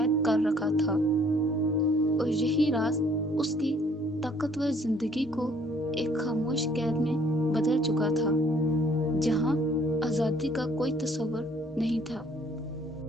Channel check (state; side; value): normal; both; correlation 0.61